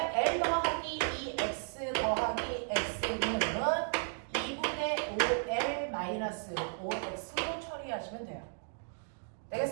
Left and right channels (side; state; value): left; silent; digital silence